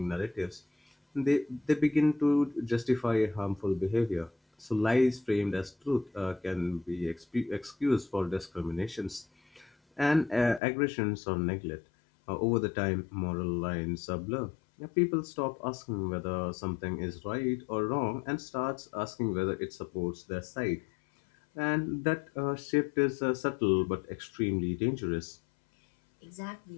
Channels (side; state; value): right; drops out; at 10.6 s